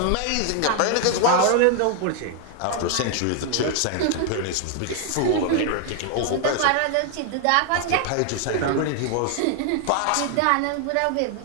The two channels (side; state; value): both; different; correlation 0.00